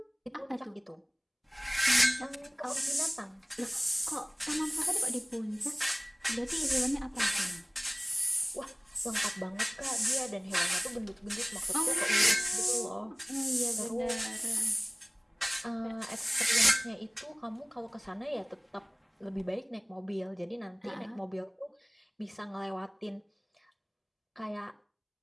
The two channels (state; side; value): identical; both; correlation 1.00